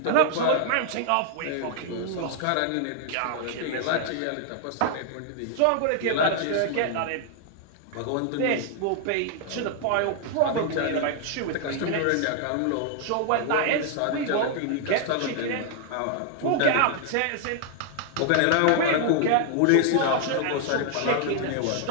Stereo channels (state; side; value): different; both; correlation 0.00